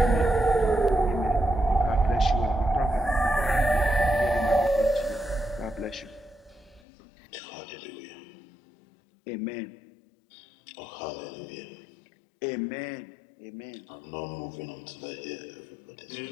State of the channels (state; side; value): drops out; right; at 6.8 s